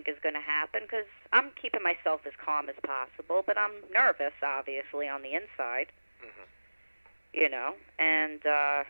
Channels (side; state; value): both; inverted; correlation -1.00